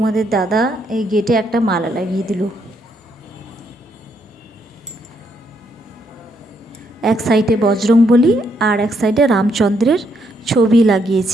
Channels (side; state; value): both; normal; correlation 0.74